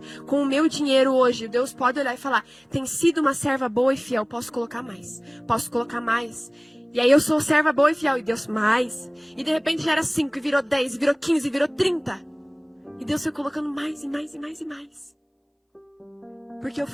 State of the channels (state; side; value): identical; both; correlation 1.00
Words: Com o meu dinheiro hoje, Deus pode olhar e falar, tem sido uma serva boa e fiel, posso colocar mais. Posso colocar mais. E aí eu sou serva boa e fiel, e Deus mais. E de repente já era 5, e virou 10, e virou 15, e virou 30. E Deus foi colocando mais, e mais, e mais, e mais. Porque eu